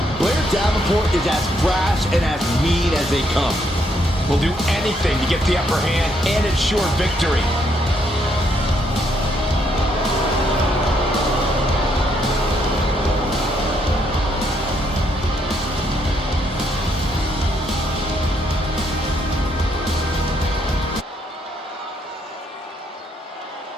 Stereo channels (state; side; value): normal; both; correlation 0.73